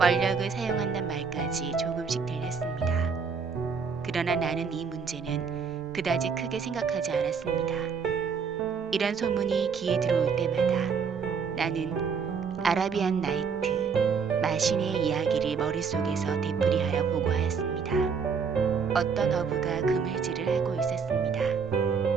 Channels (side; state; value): left; quieter; 5.8 dB